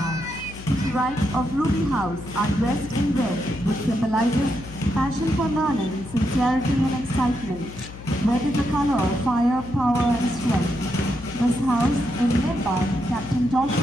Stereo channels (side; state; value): left; noise; hum, 14 dB below the sound